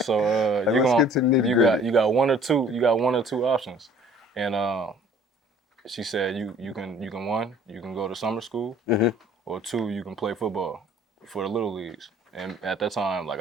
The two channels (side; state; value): both; normal; correlation 0.53